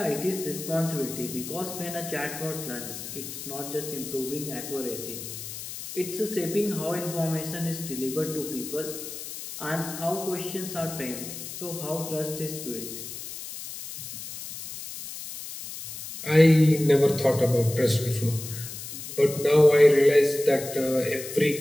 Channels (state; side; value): noise; left; hiss, 10 dB below the sound